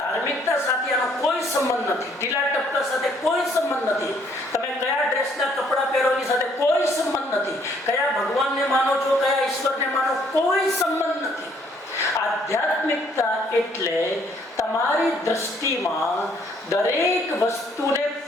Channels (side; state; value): both; normal; correlation 0.65